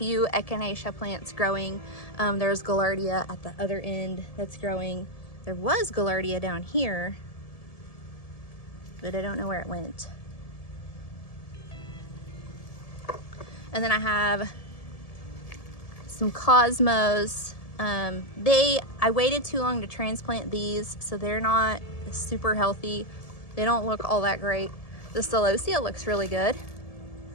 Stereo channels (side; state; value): right; late; 1.7 ms